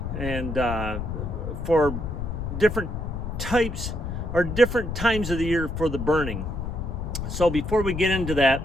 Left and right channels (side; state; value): left; noise; rumble, 5 dB below the sound